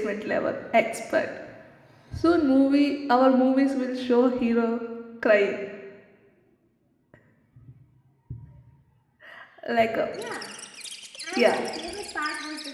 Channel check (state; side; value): identical; both; correlation 1.00